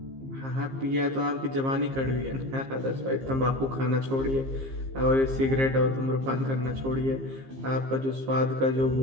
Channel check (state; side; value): late; left; 15 ms